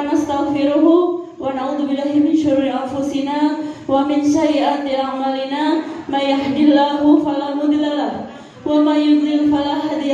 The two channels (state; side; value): identical; both; correlation 1.00